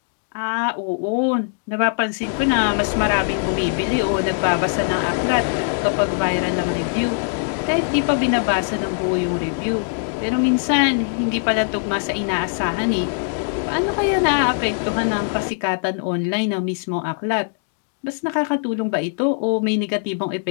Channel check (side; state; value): right; silent; digital silence